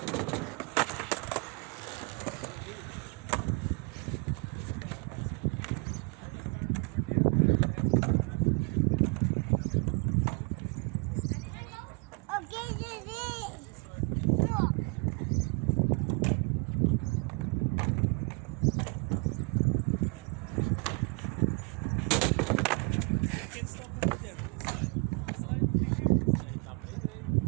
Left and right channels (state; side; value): quieter; left; 32.4 dB